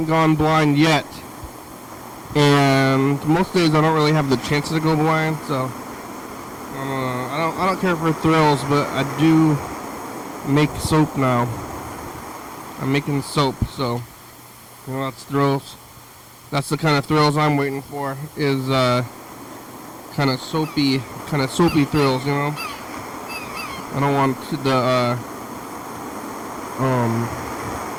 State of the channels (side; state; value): both; identical; correlation 1.00